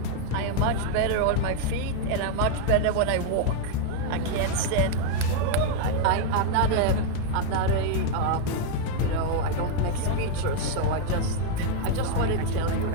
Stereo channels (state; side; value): different; both; correlation 0.00